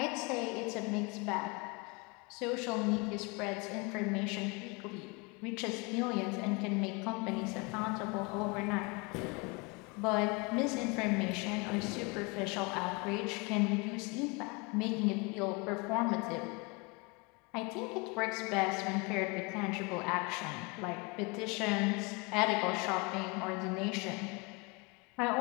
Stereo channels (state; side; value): quieter; right; 28.5 dB